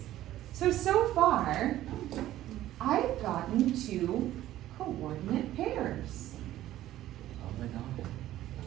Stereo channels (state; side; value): quieter; left; 13.9 dB